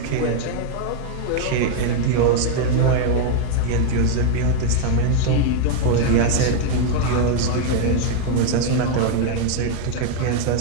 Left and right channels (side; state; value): both; different; correlation 0.00